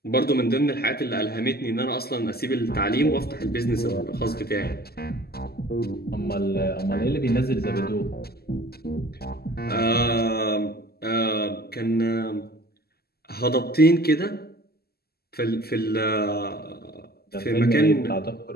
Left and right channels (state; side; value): late; right; 0.46 ms